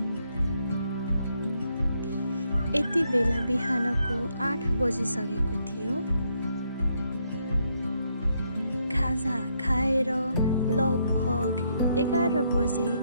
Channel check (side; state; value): both; inverted; correlation -0.75